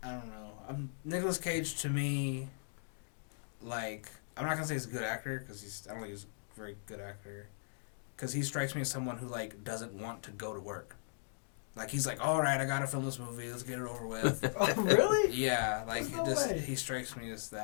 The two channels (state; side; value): silent; right; digital silence